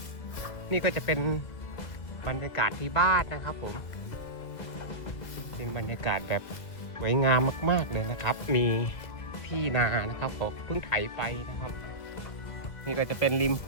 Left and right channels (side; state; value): right; late; 2.0 ms